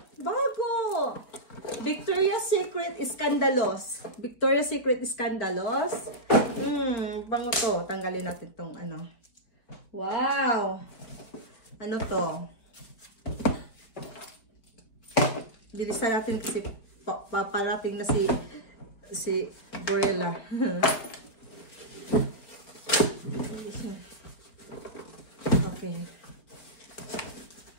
Bago! Victoria's Secret Scandalous. Victoria's Secret Scandalous. Bango to. Tanggalin natin tong ano. Wow! Ano to? Bilisan natin kasi paparating na si Gorilla. Okay.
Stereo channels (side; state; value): right; late; 4.3 ms